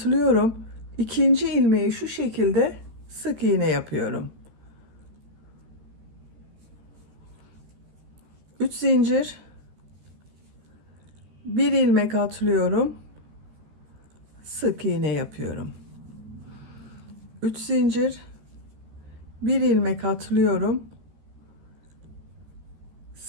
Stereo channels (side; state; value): left; late; 14 ms